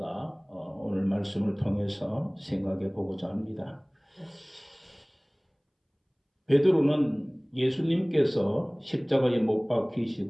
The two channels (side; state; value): both; identical; correlation 1.00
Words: 오늘 말씀을 통해서 생각해 보고자 합니다. 베드로는 예수님께서 십자가에 못